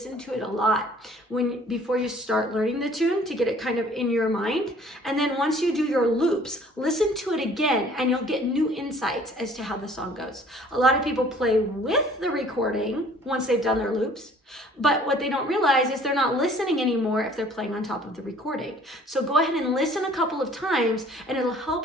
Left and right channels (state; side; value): normal; both; correlation 0.54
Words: to it a lot before you start learning the tune, to get it kind of in your mind. And then once you do your loops, listen to it again and you'll get new insights as to how the song goes. A lot of people play with the recording once they've done their loops, but what they don't realize is they're not listening anymore if they're playing on top of the recording. So go ahead and listen a couple of times and it'll